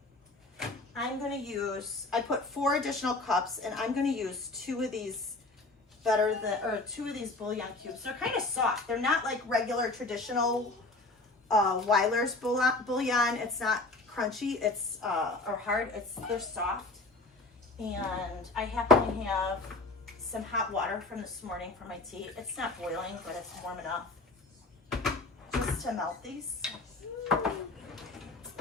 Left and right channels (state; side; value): quieter; right; 3.2 dB